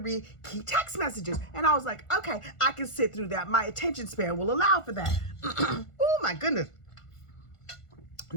key text messages. And I was like, okay, I can sit through that. My attention span will allow for that. Oh my goodness.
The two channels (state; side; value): late; right; 1.5 ms